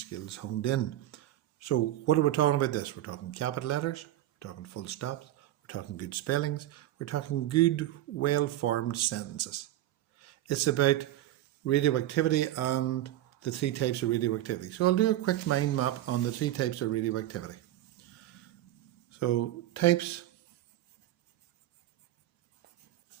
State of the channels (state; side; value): quieter; left; 14.0 dB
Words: honed in. So, what are we talking about this? We're talking capital letters, we're talking full stops, we're talking good spellings, we're talking good, well-formed sentences. It's about radioactivity and the 3 types of radioactivity. So I'll do a quick mind map on the 3 types of radioactivity. So types